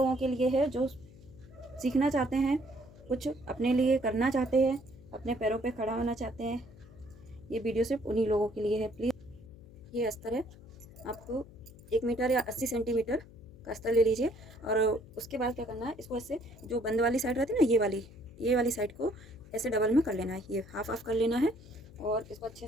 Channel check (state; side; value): noise; left; hum, 21 dB below the sound